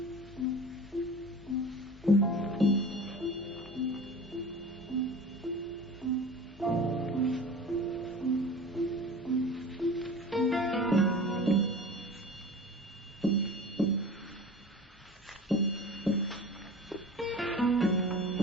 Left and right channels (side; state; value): both; normal; correlation 0.38